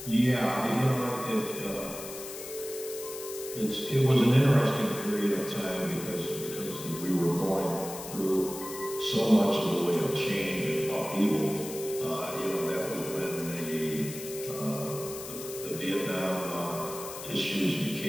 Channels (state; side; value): noise; left; hiss, 11 dB below the sound